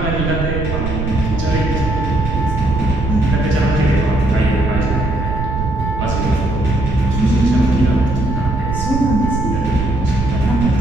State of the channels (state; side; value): noise; right; rumble, 3 dB below the sound